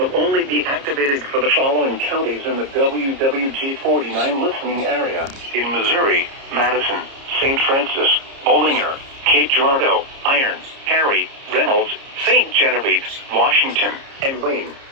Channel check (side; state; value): left; late; 30 ms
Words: only be activated for the following counties in the WWG49 listening area: in Missouri, Madison, St. Francis, Bollinger, Cape Girardeau, Iron, Perry, Reynolds, St. Genevieve, Washington, and Wayne.